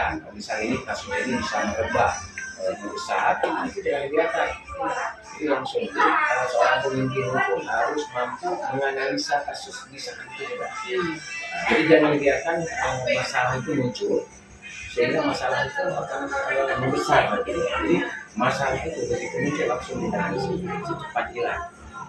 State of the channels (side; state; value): both; identical; correlation 1.00